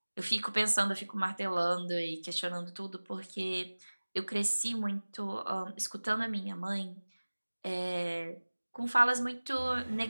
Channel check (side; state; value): both; inverted; correlation -1.00